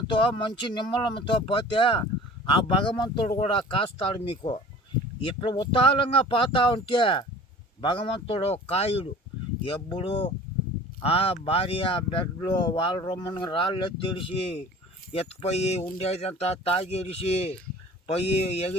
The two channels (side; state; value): both; normal; correlation 0.44